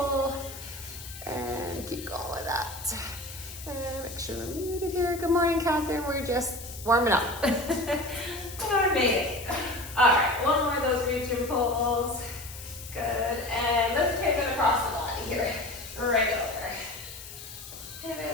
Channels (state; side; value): noise; left; hiss, 13 dB below the sound